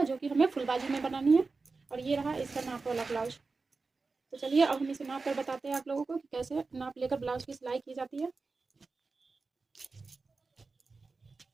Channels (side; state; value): left; quieter; 4.1 dB